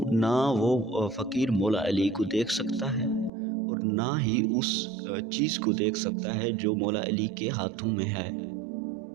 فقیر مولا علی کو دیکھ سکتا ہے اور نہ ہی اس چیز کو دیکھ سکتا ہے جو مولا علی کے ہاتھوں میں ہے۔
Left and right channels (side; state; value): left; drops out; at 3.3 s